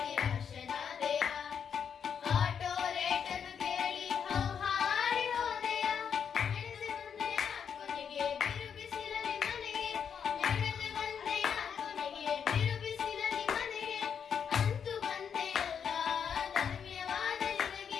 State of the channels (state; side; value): quieter; right; 7.4 dB